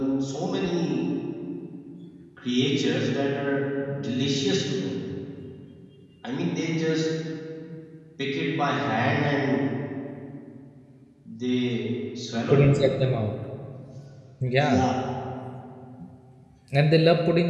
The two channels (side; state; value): both; identical; correlation 1.00